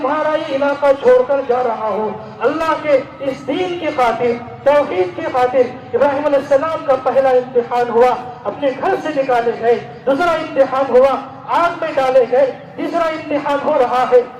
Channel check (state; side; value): identical; both; correlation 1.00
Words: یہ علاقہ چھوڑ کر جا رہا ہوں اللہ کے اس دین کی خاطر، توحید کی خاطر۔ ابراہیم علیہ السلام کا پہلا امتحان ہوا، اپنے گھر سے نکالے گئے، دوسرا امتحان ہوا آگ میں ڈالے گئے، تیسرا امتحان ہو رہا ہے